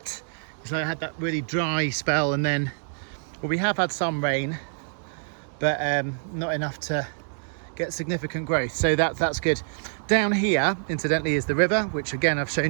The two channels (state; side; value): silent; left; 55 dB below the other